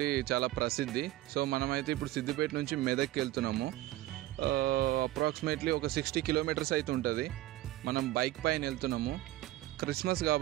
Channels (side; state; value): left; quieter; 15.8 dB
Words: చాలా ప్రసిద్ధి. సో మనమైతే ఇప్పుడు సిద్దిపేట నుంచి మెదక్కి వెళ్తున్నాము. అప్రాక్సిమేట్లీ ఒక 60 కిలోమీటర్స్ అయితే ఉంటుంది. మనం బైక్ పైన వెళ్తున్నాము. క్రిస్మస్